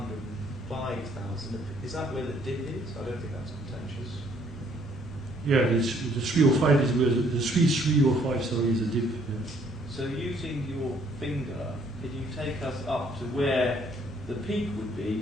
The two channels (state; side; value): normal; both; correlation 0.64